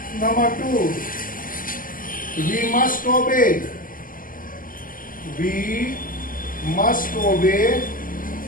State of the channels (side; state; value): right; late; 0.40 ms